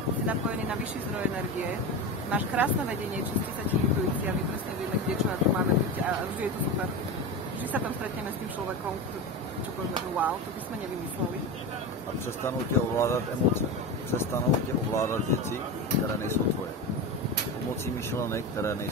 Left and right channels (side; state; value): both; normal; correlation 0.22